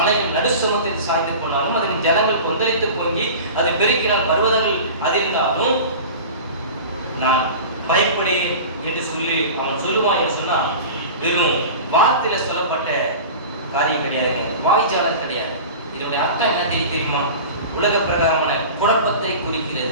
நடுசுமத்தை சாய்ந்து போனாலும், அதன் ஜனங்கள் கொந்தளித்து பொங்கி அதை பெருக்கினால் பர்வதங்கள் அதிர்ந்தாலும் நான் பயப்படேன் என்று சொல்லி அவன் சொல்லுவான் என்று சொன்னால், வெறும் வார்த்தையில சொல்லப்பட்ட காரியம் கிடையாது, வாய்ச்சாலம் கிடையாது. இதனுடைய அர்த்தம் என்ன தெரியுமா? உலக பிரகாரமான குழப்பத்தை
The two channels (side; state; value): both; inverted; correlation -0.35